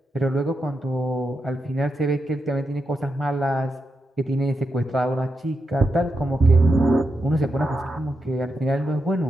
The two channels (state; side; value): normal; both; correlation 0.85